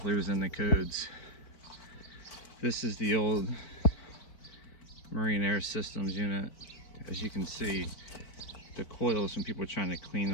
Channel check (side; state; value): right; late; 4.5 ms